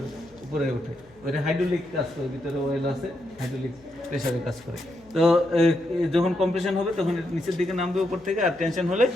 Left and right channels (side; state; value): left; noise; hum, 29 dB below the sound